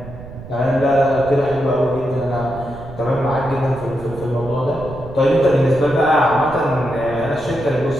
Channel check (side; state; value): right; noise; rumble, 14 dB below the sound